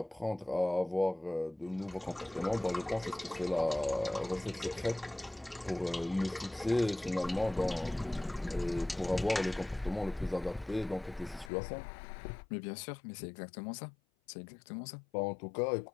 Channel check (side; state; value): right; drops out; at 11.5 s